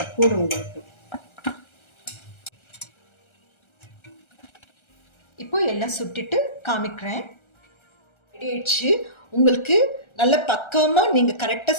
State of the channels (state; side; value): late; right; 1.3 ms